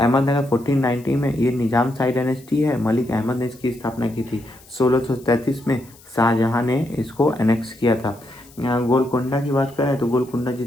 1490 में ये निजाम शाही डायनेस्टी है। मलिक अहमद ने इसकी स्थापना की थी। 1633 में शाहजहां ने इसको एनेक्स किया था। गोलकोंडा की बात करें तो गोलकोंडा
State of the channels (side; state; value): left; noise; hiss, 25 dB below the sound